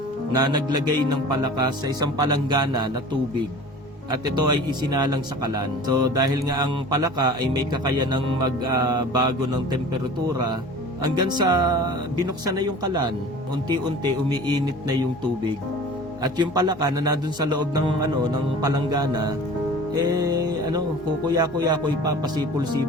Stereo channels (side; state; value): both; normal; correlation 0.41